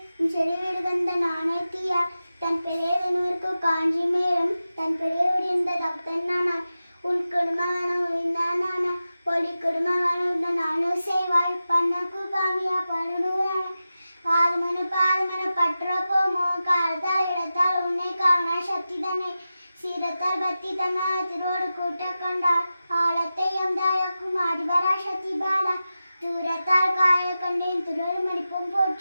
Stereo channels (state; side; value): inverted; both; correlation -0.93